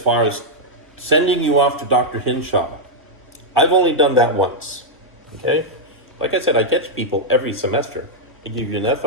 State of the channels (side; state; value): both; normal; correlation -0.03